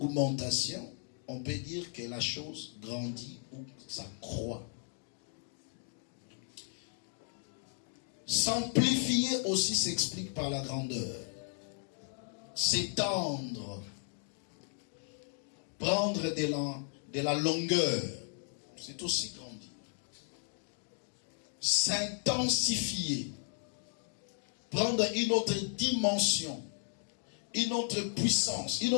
on peut dire que la chose grandit ou ça croît. S'amplifier aussi s'explique par la grandeur. S'étendre. Prendre de la longueur. C'est aussi grandir. S'intensifier. Prendre une autre dimension. Une autre puissance. Une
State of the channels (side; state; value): right; silent; 54 dB below the other